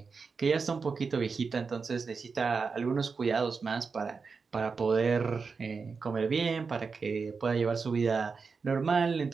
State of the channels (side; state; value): left; quieter; 5.0 dB